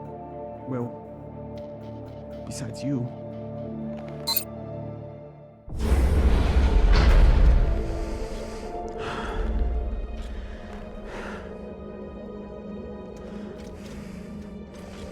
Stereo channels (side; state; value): both; identical; correlation 1.00